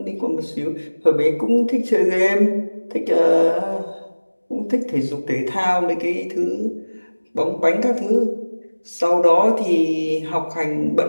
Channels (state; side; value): inverted; both; correlation -1.00